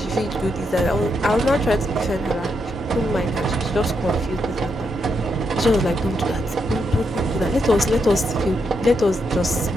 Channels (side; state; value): both; normal; correlation 0.81